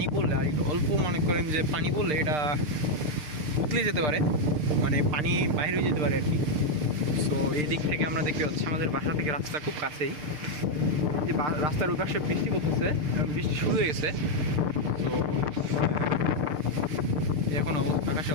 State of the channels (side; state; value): left; late; 6.7 ms